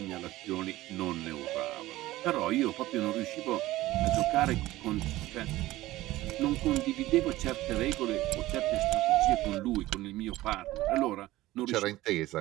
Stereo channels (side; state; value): left; quieter; 16.9 dB